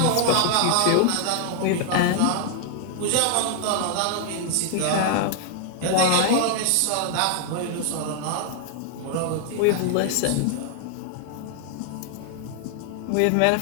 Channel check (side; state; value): both; different; correlation 0.00